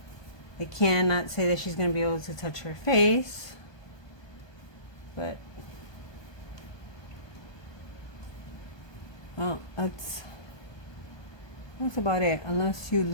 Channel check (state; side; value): late; right; 1.2 ms